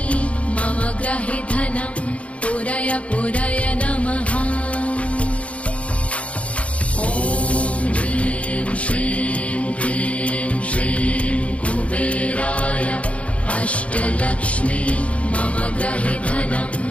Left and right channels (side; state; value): right; late; 0.064 ms